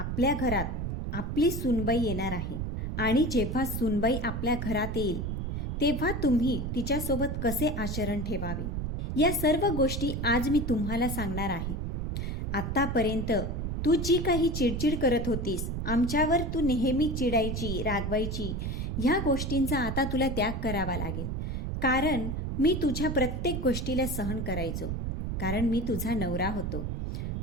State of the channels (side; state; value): right; noise; rumble, 2 dB below the sound